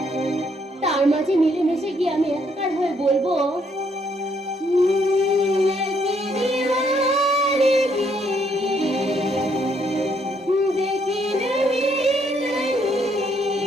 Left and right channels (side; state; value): both; normal; correlation 0.71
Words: তার মাঝে মিলেমিশে গিয়ে আমি একাকার হয়ে বলবো